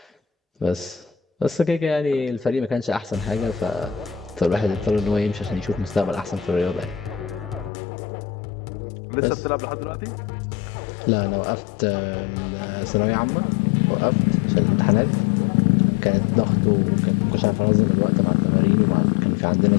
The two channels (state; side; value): drops out; right; at 7.7 s